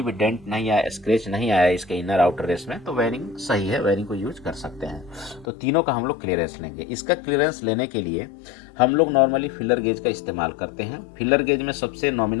भी डेंट नहीं आया, स्क्रैच नहीं आया इसके इनर आउटर रेस में, तो बेयरिंग सही है, बेयरिंग को यूज कर सकते हैं। तो तीनों का हम लोग क्लियरेंस लेंगे। इसका क्लियरेंस लेने के लिए हम लोग नॉर्मली फिलर गेज का इस्तेमाल करते हैं। फिलर गेज में सबसे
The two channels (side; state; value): right; drops out; at 5.5 s